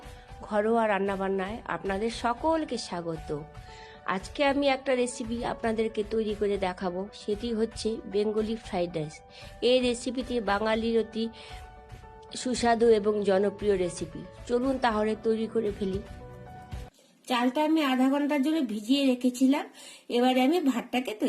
ঘরোয়া রান্নাবান্নায় আপনাদের সকলকে স্বাগত। আজকে আমি একটা রেসিপি আপনাদেরকে তৈরি করে দেখাবো, সেটি হচ্ছে বেঙ্গলি ফ্রাইড রাইস। এই রেসিপিটি বাঙালির অতি সুস্বাদু এবং জনপ্রিয় রেসিপি। চলুন তাহলে তৈরি করে ফেলি। চালটা আমি আধা ঘন্টার জন্য ভিজিয়ে রেখেছিলাম। এবারে আমি ভাতটাকে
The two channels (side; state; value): both; identical; correlation 1.00